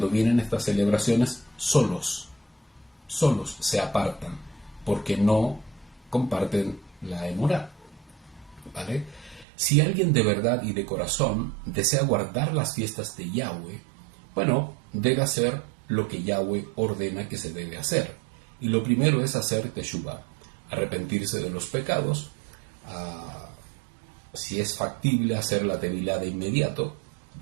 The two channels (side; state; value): left; drops out; at 9.5 s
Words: vienen estas celebraciones solos se apartan porque no comparten la emorá, ¿vale? Si alguien de verdad y de corazón desea guardar las fiestas de Yahweh, bueno, debe hacer lo que Yahweh ordena que se debe hacer, y lo primero es hacer Teshuvah, arrepentirse de los pecados, si es factible hacer la tevilá de inmediato,